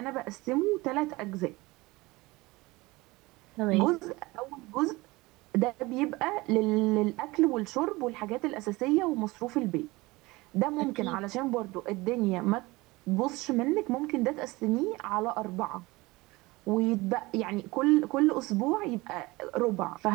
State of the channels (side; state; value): left; quieter; 21.8 dB